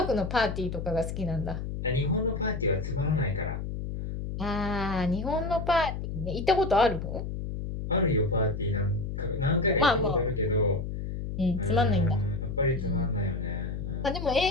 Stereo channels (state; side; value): noise; left; hum, 5 dB below the sound